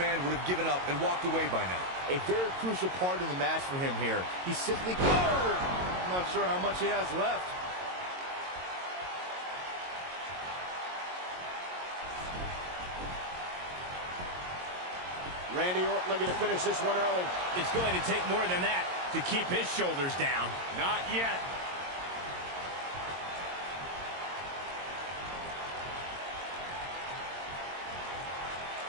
would have given up and walked away by now. A very crucial part in the match for him here. He simply... I'm not sure how much he has left. Randy Orton looking to finish this one early. It's going to take more than that to keep his shoulders down. Not yet.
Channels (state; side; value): late; left; 22 ms